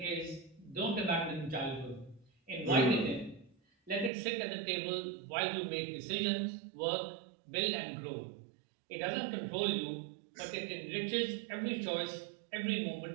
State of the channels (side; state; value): left; drops out; at 4.1 s